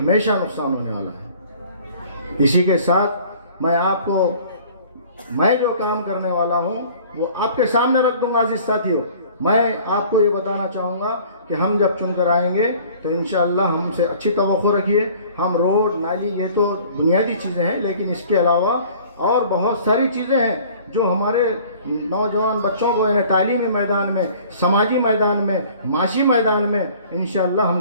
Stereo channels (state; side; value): inverted; both; correlation -0.51